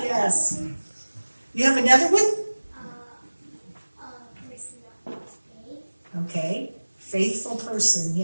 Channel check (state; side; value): inverted; both; correlation -1.00